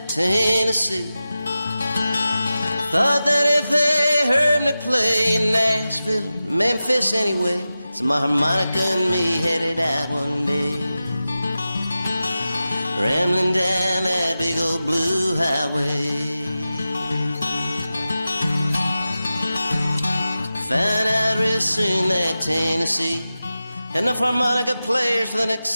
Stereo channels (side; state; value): both; inverted; correlation -0.94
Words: Tennessee. Thought that if they heard me play in Nashville or Memphis anyway, so my harmonica and me headed out one day, rambling down that big old blue highway. Found out real soon that Tennessee had enough harmonica players for the next